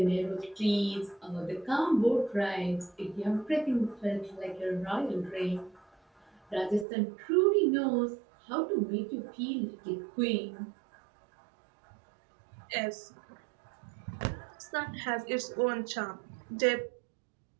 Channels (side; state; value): left; drops out; at 6.9 s